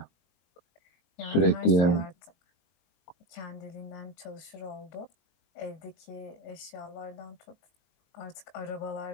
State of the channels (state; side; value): late; right; 22 ms